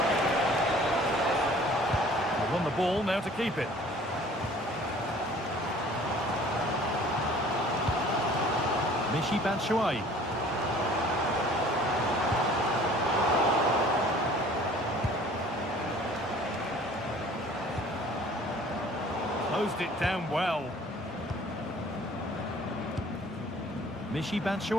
Won the ball, now to keep it. Michy Batshuayi. Closed it down well. Michy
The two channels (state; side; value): normal; both; correlation 0.51